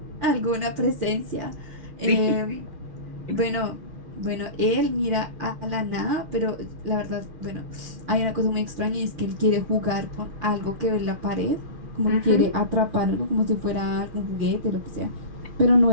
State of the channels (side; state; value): left; late; 6.6 ms